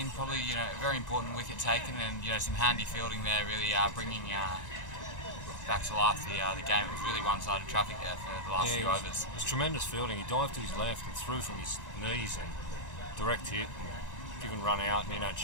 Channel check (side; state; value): right; late; 1.9 ms